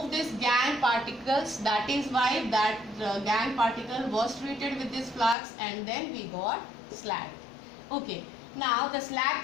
this gangue particles. That is why that gangue particle was treated with this flux and then we got slag. Okay, now the slag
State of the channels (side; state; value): right; drops out; at 5.4 s